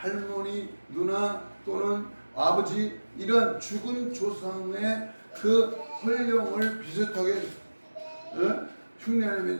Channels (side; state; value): both; inverted; correlation -1.00